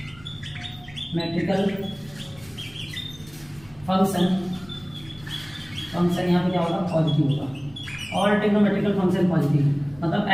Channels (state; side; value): noise; right; rumble, 25 dB below the sound